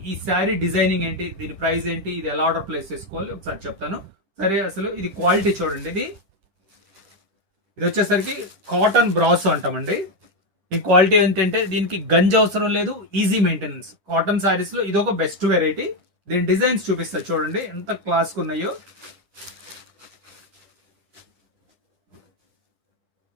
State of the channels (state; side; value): late; left; 10 ms